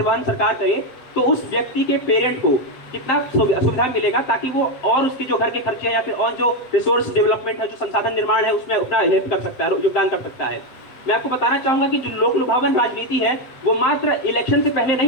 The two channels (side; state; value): right; late; 7.9 ms